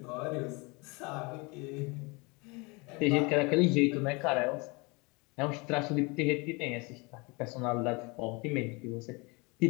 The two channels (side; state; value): right; quieter; 27.9 dB